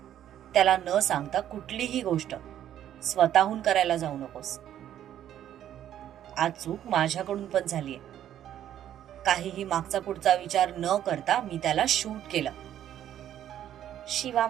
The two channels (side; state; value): left; quieter; 11.1 dB